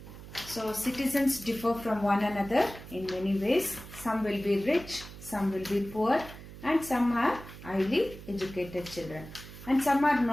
So citizens differ from one another in many ways. Some will be rich, some will be poor, and some are highly educated children. And some are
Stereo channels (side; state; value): right; noise; hum, 15 dB below the sound